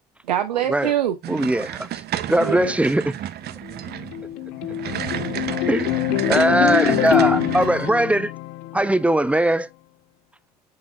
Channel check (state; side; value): normal; both; correlation 0.64